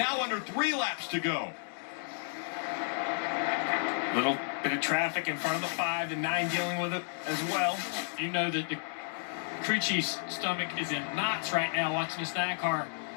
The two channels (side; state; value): right; silent; digital silence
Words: under 3 laps to go. Little bit of traffic in front of the 5, the 9 dealing with it as well. You know that the crew chief's stomach is in knots right now watching this 9 car